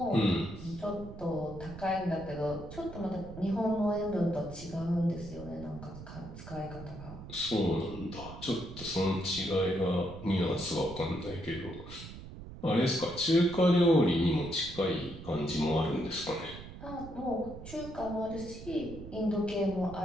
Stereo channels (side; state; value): right; noise; rumble, 13 dB below the sound